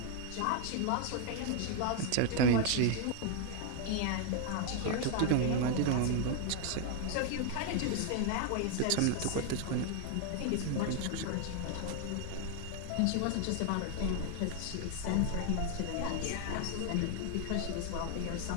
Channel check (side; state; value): both; different; correlation 0.00